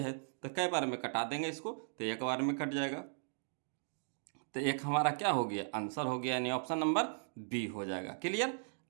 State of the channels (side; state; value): left; silent; digital silence